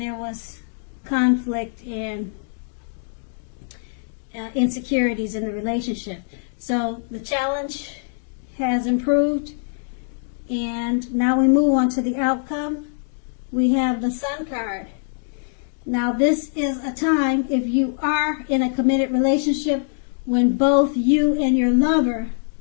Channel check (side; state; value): right; silent; digital silence